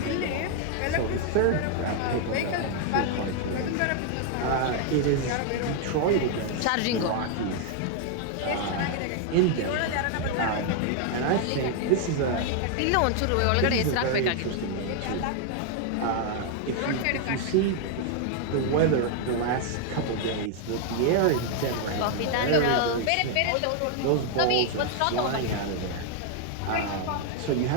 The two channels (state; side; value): different; both; correlation 0.00